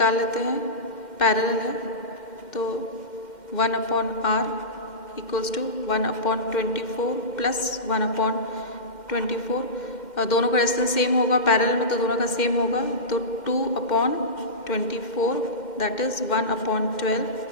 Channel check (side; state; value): right; late; 2.1 ms